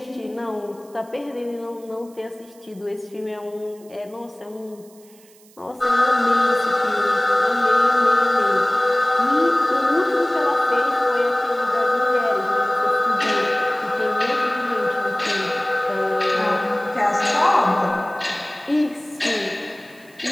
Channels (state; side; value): noise; right; hiss, 27 dB below the sound